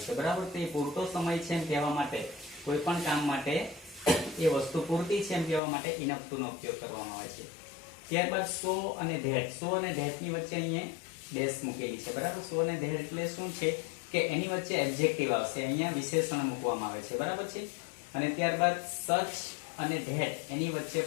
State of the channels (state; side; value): drops out; right; at 5.6 s